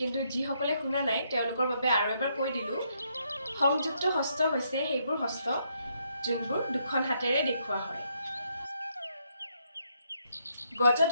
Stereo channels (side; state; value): both; inverted; correlation -0.75